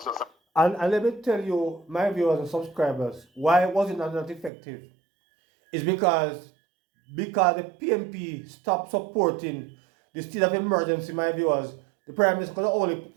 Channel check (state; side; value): drops out; left; at 4.5 s